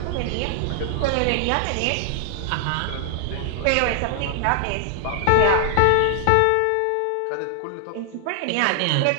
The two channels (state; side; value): different; both; correlation 0.00